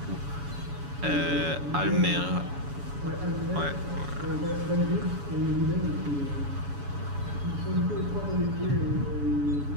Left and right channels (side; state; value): left; late; 7.1 ms